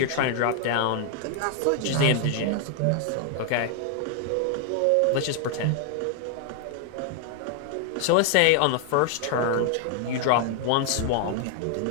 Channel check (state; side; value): different; both; correlation 0.00